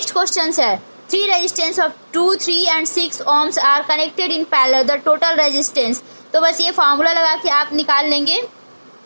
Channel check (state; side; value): inverted; both; correlation -1.00